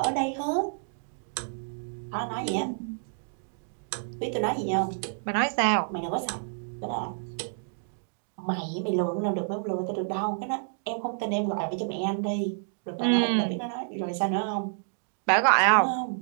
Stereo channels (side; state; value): left; silent; digital silence